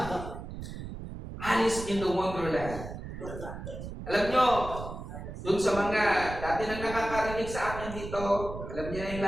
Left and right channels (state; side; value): noise; right; rumble, 9 dB below the sound